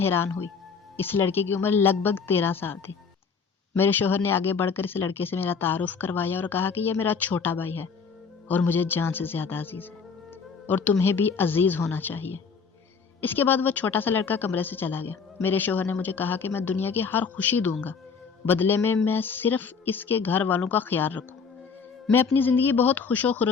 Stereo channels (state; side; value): quieter; right; 5.6 dB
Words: ہوئی۔ اس لڑکے کی عمر لگ بھگ 13 سال تھی۔ میرے شوہر نے آگے بڑھ کر اس لڑکے سے میرا تعارف کروایا اور کہا کہ یہ میرا چھوٹا بھائی ہے اور مجھے جان سے زیادہ عزیز ہے اور تمہیں بھی عزیز ہونا چاہیے۔ اس کے بعد وہ چھوٹا سا لڑکا کمرے سے چلا گیا۔ میرے شوہر نے مجھے کہا کہ میں دنیا کی ہر خوشی دوں گا، بدلے میں صرف اس کے گھر والوں کا خیال رکھوں۔ میں اپنی زندگی بہت خوش و